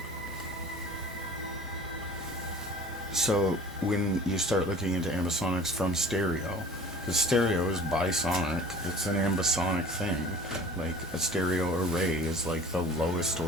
so when you start looking into ambisonics from stereo, the stereo is bisonic, it's an ambisonic thing. Like a stereo array is like the lowest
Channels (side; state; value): both; normal; correlation 0.45